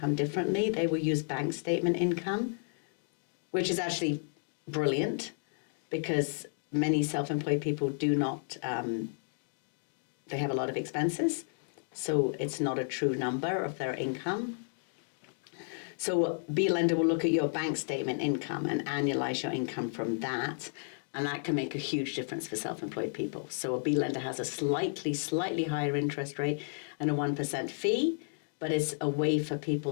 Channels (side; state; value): right; silent; digital silence